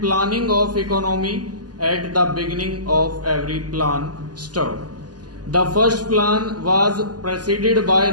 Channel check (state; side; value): late; left; 0.69 ms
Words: planning of economy at the beginning of every plan. Stop. The first plan was preceded by